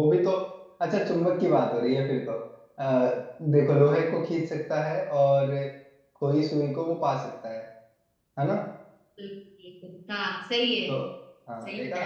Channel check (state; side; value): identical; both; correlation 1.00